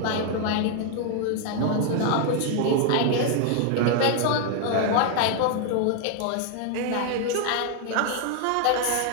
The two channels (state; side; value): different; both; correlation 0.00